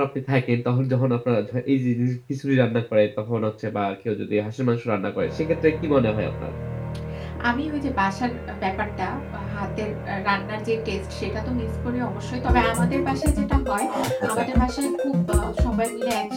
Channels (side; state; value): both; identical; correlation 1.00